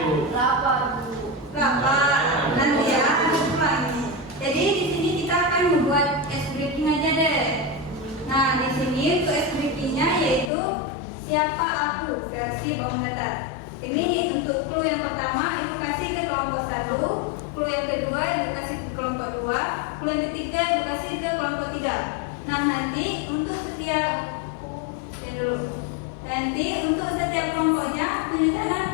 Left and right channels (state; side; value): drops out; right; at 10.5 s